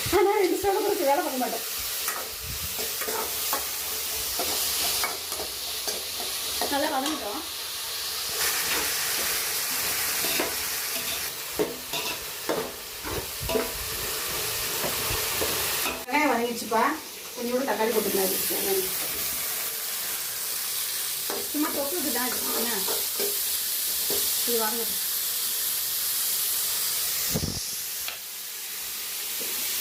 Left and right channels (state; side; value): identical; both; correlation 1.00